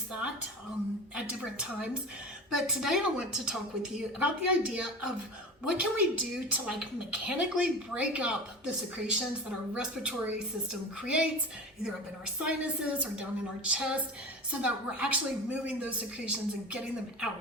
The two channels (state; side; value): normal; both; correlation 0.32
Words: that at different times. But today I want to talk with you about the idea of what can we do to like mechanically break up the secretions that our respiratory system creates, either up in our sinuses or down in our chest, so that we're actually moving those secretions and getting them